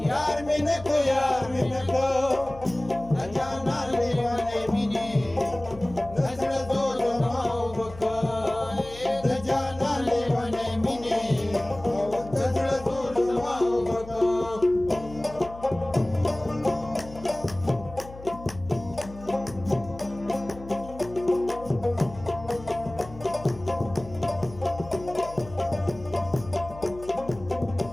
یار مې نک د جانا لیونې مینې د زړه زور زما وبکه د جانا لیونې مینې د زړه زور زما وبکه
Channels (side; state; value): left; noise; hum, 16 dB below the sound